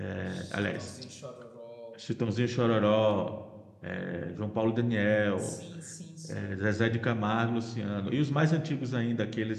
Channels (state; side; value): identical; both; correlation 1.00